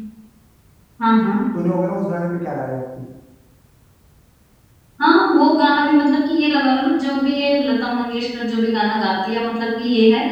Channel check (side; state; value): both; identical; correlation 1.00